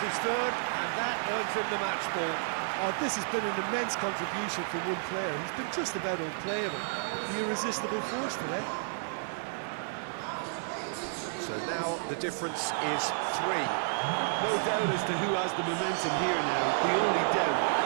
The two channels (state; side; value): silent; left; digital silence